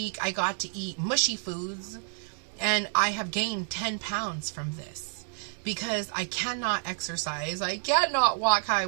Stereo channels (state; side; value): silent; left; 56 dB below the other